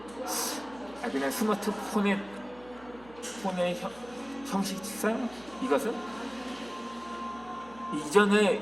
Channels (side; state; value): right; noise; hum, 22 dB below the sound